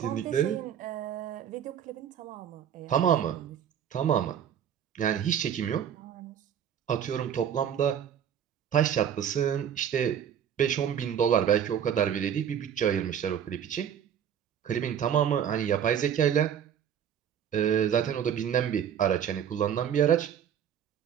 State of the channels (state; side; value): quieter; left; 9.0 dB